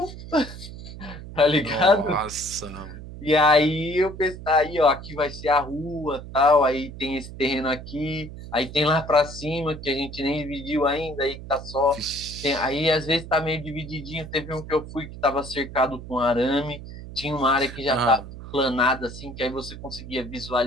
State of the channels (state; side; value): noise; right; hum, 12 dB below the sound